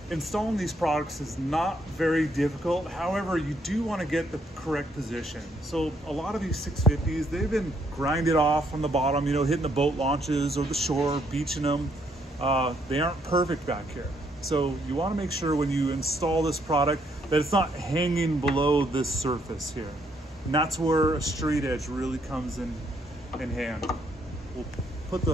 Installing these products is not very difficult. However, you do want to get the correct position. So a lot of these 650s, they've been grinded off on the bottom, you know, hitting the boat launches or the shore, beaching them. They aren't perfect back here. So you want to make sure when you install this product that it's not hanging below this surface here. And that's where a straight edge really comes in hand. We'll put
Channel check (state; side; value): normal; both; correlation 0.71